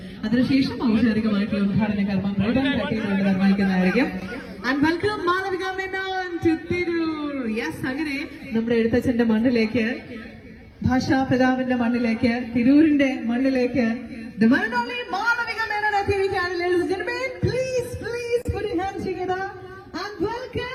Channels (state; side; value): identical; both; correlation 1.00